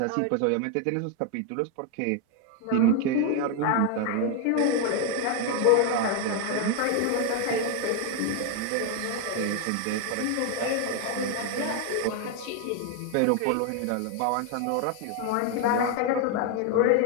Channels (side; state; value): both; different; correlation 0.01